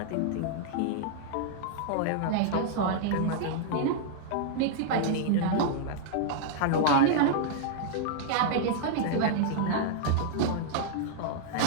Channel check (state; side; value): different; both; correlation -0.01